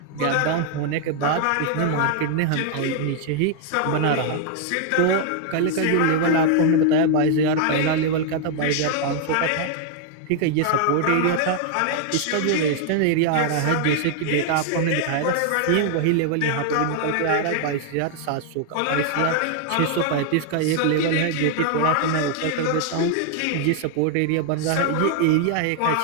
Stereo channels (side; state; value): both; different; correlation 0.00